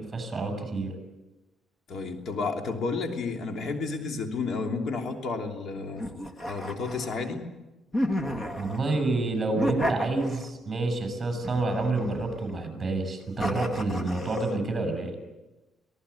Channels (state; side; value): normal; both; correlation 0.75